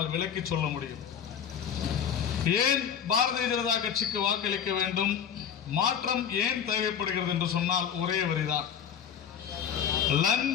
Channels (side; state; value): right; quieter; 8.3 dB